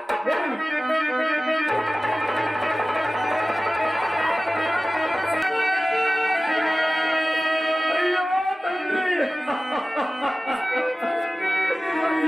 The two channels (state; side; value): normal; both; correlation 0.96